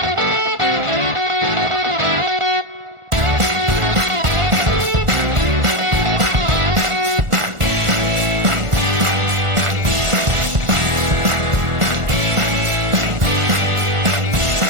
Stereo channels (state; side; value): late; left; 1.4 ms